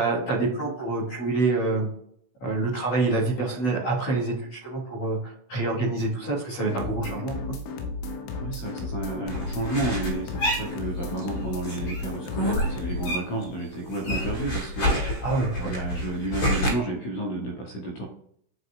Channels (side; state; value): right; late; 16 ms